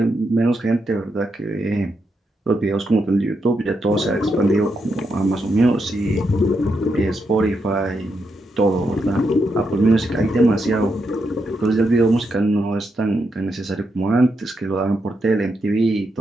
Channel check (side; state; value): both; normal; correlation 0.82